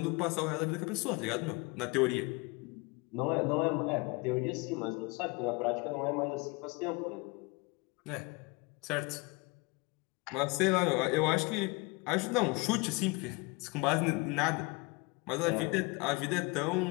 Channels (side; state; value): right; quieter; 27.0 dB